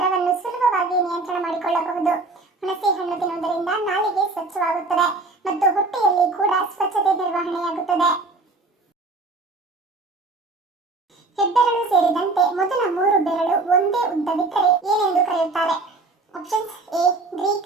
ಸುಲಭವಾಗಿ ನಿಯಂತ್ರಣ ಮಾಡಿಕೊಳ್ಳಬಹುದು. ಹುಣಸೆ ಹಣ್ಣು ತಿನ್ನುವುದರಿಂದ ನಾಲಿಗೆ ಸ್ವಚ್ಛವಾಗುತ್ತದೆ ಮತ್ತು ಹೊಟ್ಟೆಯಲ್ಲಿ ಕೂಡ ಸ್ವಚ್ಛತೆ ನಿರ್ವಹಣೆಯಾಗುತ್ತದೆ. ಹೆಬ್ಬೆರಳು ಸೇರಿದಂತೆ ಮೊದಲ 3 ಬೆರಳು ಒಂದೇ ಉದ್ದವಿದ್ದರೆ ಏನೆಂದು ಕರೆಯುತ್ತಾರೆ? ಆಪ್ಷನ್ಸ್: ಎ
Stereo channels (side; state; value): left; quieter; 3.5 dB